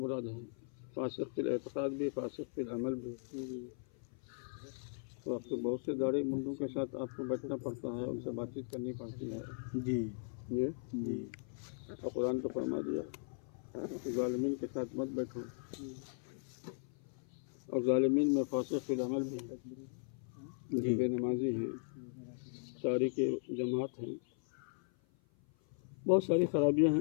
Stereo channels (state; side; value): silent; right; 52 dB below the other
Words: ہیں، فاسق فی الاعتقاد بھی، فاسق فی العمل بھی۔ تو آپ کو بہت سے داڑھی منڈوں کے ساتھ آپ کو بیٹھنا پڑتا ہے، ان سے بات چیت کرنی پڑتی ہے۔ جی جی اور قرآن تو فرما دیا کہ ظالمین کے ساتھ مت بیٹھو، اور ظالمین میں فاسق فی العمل بھی ہے، جو بے نمازی ہیں، تاریک جماعت ہیں، بہت ساری خرابیاں